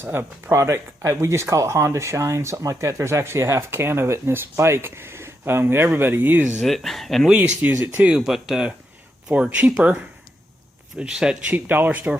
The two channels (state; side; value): normal; both; correlation 0.82